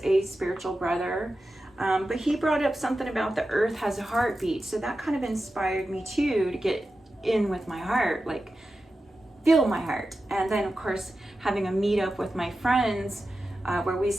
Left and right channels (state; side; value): normal; both; correlation 0.92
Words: a spiritual brother, but he brought up something about the earth has a heartbeat. So that kind of inspired me too, to get in with my heart, like feel my heart. And then of course, having a meetup with my friends where we